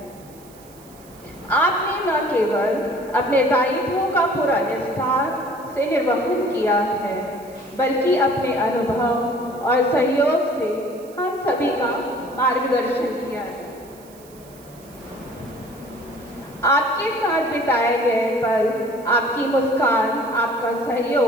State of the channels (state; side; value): noise; right; hiss, 24 dB below the sound